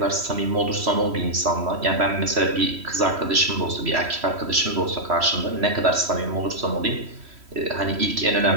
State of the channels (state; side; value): late; left; 3.1 ms